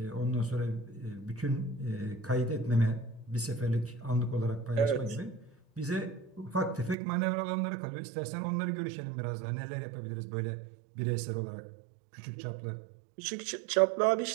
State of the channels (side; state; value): left; drops out; at 7.0 s